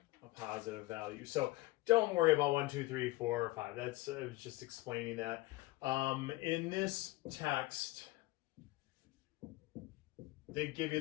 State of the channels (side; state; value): right; quieter; 19.6 dB